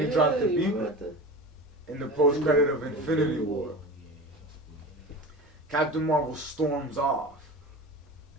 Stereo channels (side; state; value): both; normal; correlation 0.32